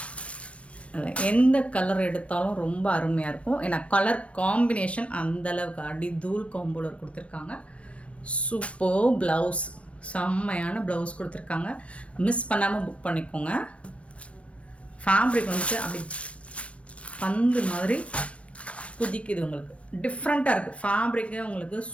எந்த கலர் எடுத்தாலும் ரொம்ப அருமையாக இருக்கும். ஏன்னா கலர் காம்பினேஷன் அந்தளவுக்கு அடி தூள் காம்போலர் கொடுத்துருக்காங்க. சூப்பர் ப்ளவுஸ், செம்மையான ப்ளவுஸ் கொடுத்துருக்காங்க. மிஸ் பண்ணாமல் புக் பண்ணிக்கோங்க. ஃபேப்ரிக் வந்துட்டு அப்படி பந்து மாதிரி குதிக்குது, உங்களுக்கு டிஃப்ரெண்ட்டாக இருக்குது. ஃபேப்ரிக்கு உங்களுக்கு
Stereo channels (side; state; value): right; late; 0.062 ms